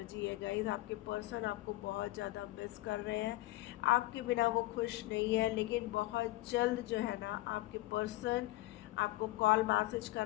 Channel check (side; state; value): right; quieter; 18.3 dB